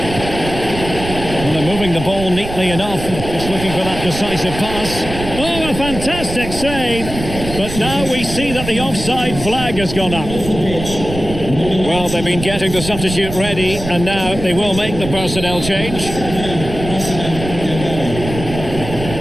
Well, they're moving the ball neatly enough, just looking for that decisive pass. Oh, a fantastic save! But now we see that the offside flag has gone up. Well, they've been getting the substitute ready, and now they will make the personnel change.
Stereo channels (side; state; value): right; noise; rumble, 9 dB below the sound